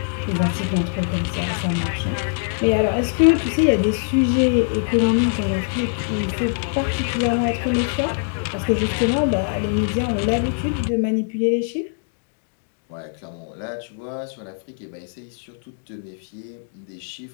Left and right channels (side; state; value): right; silent; digital silence